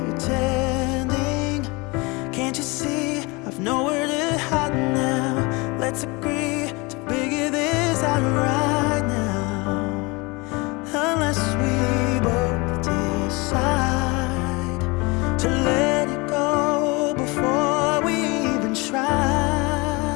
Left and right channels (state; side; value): quieter; right; 26.2 dB